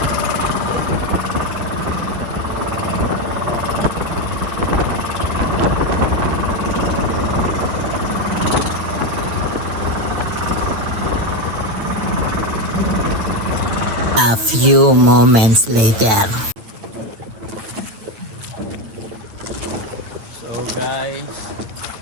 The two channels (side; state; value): left; late; 9.0 ms